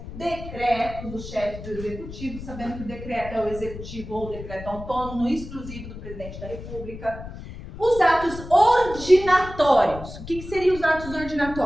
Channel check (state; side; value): noise; left; rumble, 12 dB below the sound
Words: decretos do chefe do executivo, sabendo que o decreto é o executivo ou o decreto autônomo, exclusivo do presidente da República. Os atos ordinatórios. O que seriam os atos